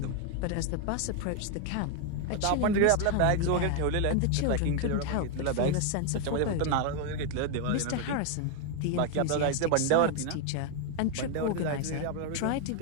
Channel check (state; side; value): different; both; correlation 0.01